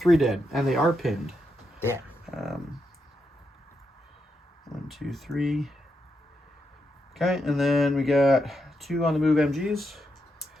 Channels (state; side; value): normal; both; correlation 0.83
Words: dead, and they are pinned. Yeah. 1, 2, 3. Okay, and then we got 2 on the move MGs.